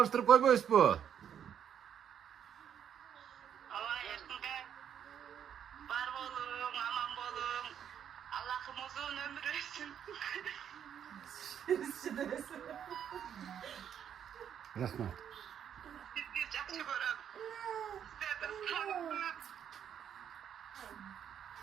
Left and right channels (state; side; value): quieter; left; 8.9 dB